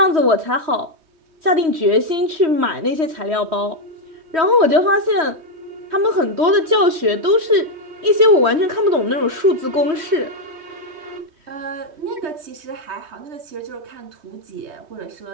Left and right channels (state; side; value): late; left; 3.1 ms